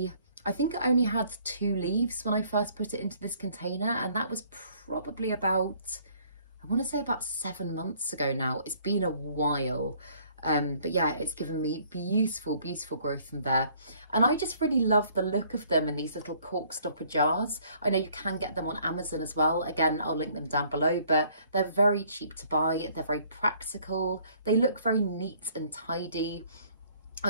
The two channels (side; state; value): both; inverted; correlation -0.60